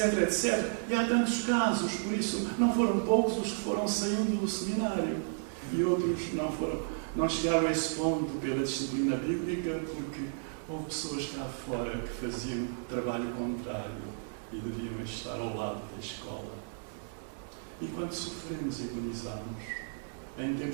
etc. E há tantos casos, por isso não foram poucos os que foram saindo do seminário, e outros não chegaram a esse ponto pela disciplina bíblica, porque houve pessoas cá fora que faziam trabalho contrário e deviam estar ao lado da escola. E quando sofremos e agonizamos, em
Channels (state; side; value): silent; left; 56 dB below the other